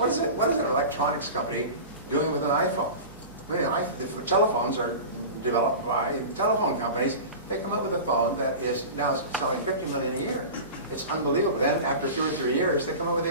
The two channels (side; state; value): both; inverted; correlation -0.32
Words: is an electronics company doing with an iPhone? I mean, the telephones are developed by telephone companies. They come up with a phone that is now selling $50 million a year. It's unbelievable. Then after 2 or 3 years, they come up with